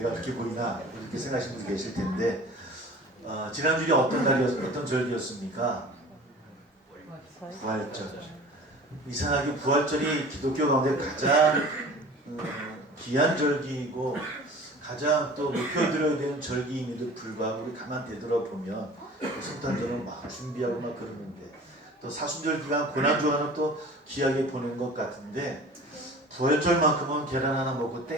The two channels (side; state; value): both; normal; correlation 0.42